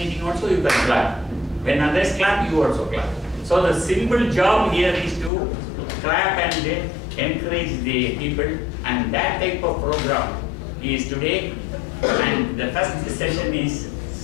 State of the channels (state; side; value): drops out; right; at 5.3 s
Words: also, you can clap. When others clap, you also clap. So the simple job here is to clap and encourage the people, and that type of program is today. And the first session is